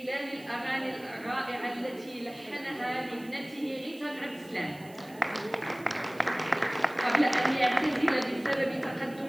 الأغاني الرائعة التي لحنها لابنته غيتا بن عبد السلام قبل أن يعتزل بسبب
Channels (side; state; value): right; noise; hiss, 23 dB below the sound